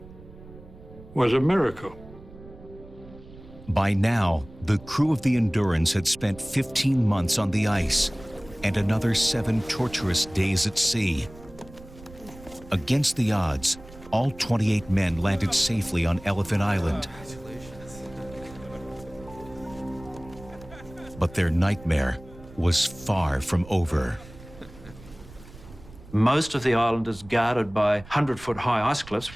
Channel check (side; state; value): right; noise; rumble, 19 dB below the sound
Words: was a miracle. By now, the crew of the Endurance had spent 15 months on the ice and another 7 torturous days at sea. Against the odds, all 28 men landed safely on Elephant Island. But their nightmare was far from over. Most of the island is guarded by 100-foot high ice cliffs.